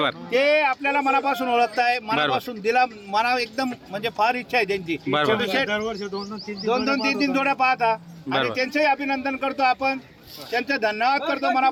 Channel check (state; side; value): identical; both; correlation 1.00